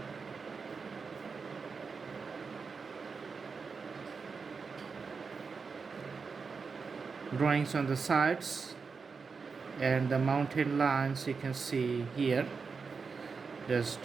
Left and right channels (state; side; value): quieter; left; 5.1 dB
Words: Drawings on the sides and the mountain lines you can see here,